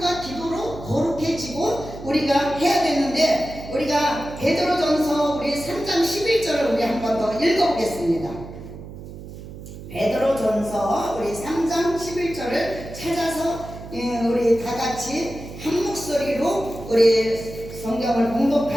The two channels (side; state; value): right; noise; hum, 13 dB below the sound